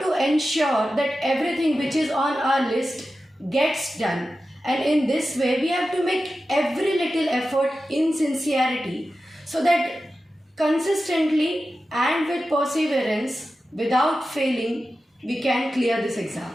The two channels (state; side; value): normal; both; correlation 0.93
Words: to ensure that everything which is on our list gets done. And in this way, we have to make every little effort in sincerity so that consistently and with perseverance, without failing, we can clear this exam.